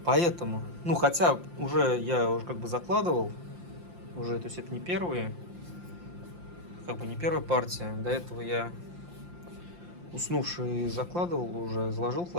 Поэтому, ну, хотя я уже как бы закладывал, уже, то есть это не первая партия. До этого я уснувший закладывал уже, заложил в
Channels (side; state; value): left; late; 5.7 ms